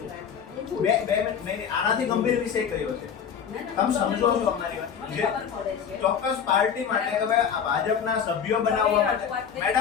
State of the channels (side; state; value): right; quieter; 7.5 dB